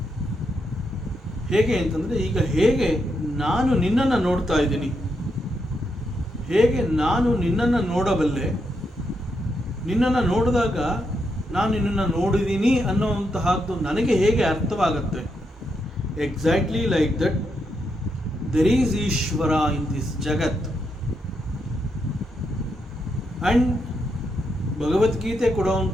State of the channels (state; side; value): normal; both; correlation 0.81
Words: ಹೇಗೆ ಅಂತಂದರೆ, ಈಗ ಹೇಗೆ ನಾನು ನಿನ್ನನ್ನು ನೋಡ್ತಾ ಇದ್ದೀನಿ, ಹೇಗೆ ನಾನು ನಿನ್ನನ್ನು ನೋಡಬಲ್ಲೆ, ನಿನ್ನನ್ನು ನೋಡಿದಾಗ ನಾನು ನಿನ್ನನ್ನು ನೋಡಿದ್ದೀನಿ ಅನ್ನೋವಂತಹದ್ದು ನನಗೆ ಹೇಗೆ ಅರ್ಥವಾಗುತ್ತೆ. Exactly like that there is Ishwara in this jagat. And ಭಗವದ್ಗೀತೆ